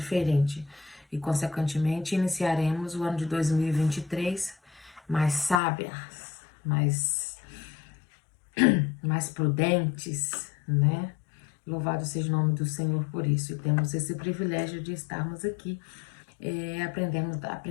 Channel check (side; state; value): right; drops out; at 5.6 s